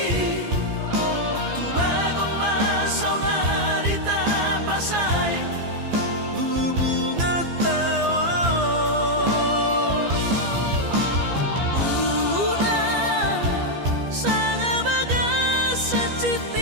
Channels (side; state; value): left; late; 15 ms